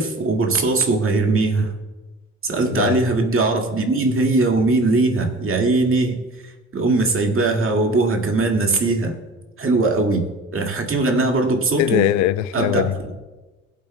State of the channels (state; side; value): normal; both; correlation 0.39